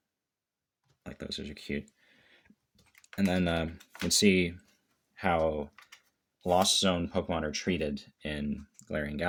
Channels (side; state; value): both; identical; correlation 1.00